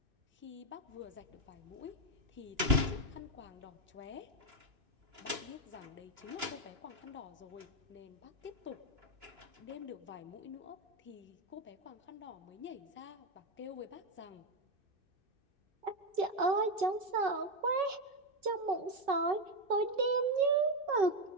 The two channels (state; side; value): late; left; 2.9 ms